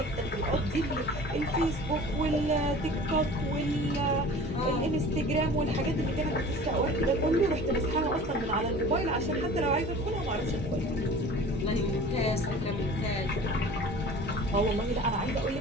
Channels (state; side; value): normal; both; correlation 0.42